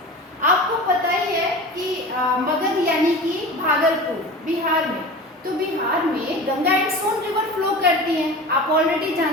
आपको पता ही है कि मगध यानी कि भागलपुर बिहार में. तो बिहार में Ganga and Son river flow करती हैं, आप ऑलरेडी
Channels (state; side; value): normal; both; correlation 0.34